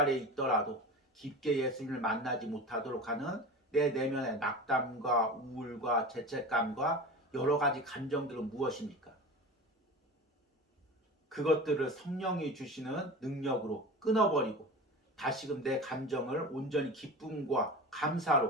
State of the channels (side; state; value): both; normal; correlation 0.31